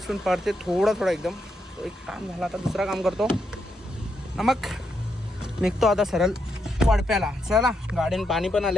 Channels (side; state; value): both; normal; correlation 0.80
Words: पण पडते थोडा एकदम. तो एक काम झाला. आता दुसरा काम करतो. मग निघतो आता सरळ वडप्याला. चला गाडीनं पाणी पण